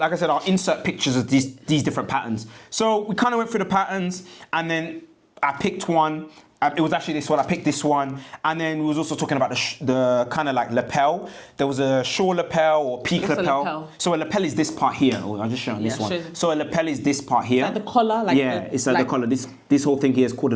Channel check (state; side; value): identical; both; correlation 1.00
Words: I said, I'll insert pictures of these different patterns. So we kind of went through the patterns, and then I picked one. It was actually this one. I picked this one, and then we was also talking about the kind of like lapel. There was a short lapel or peak lapel. So a lapel is this part here. Oh, I'll just show you this one. So a lapel is this part here. Like the collar, it's like the collar. This whole thing here is called a